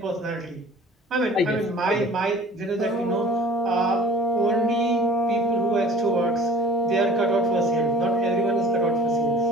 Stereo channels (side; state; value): both; normal; correlation 0.47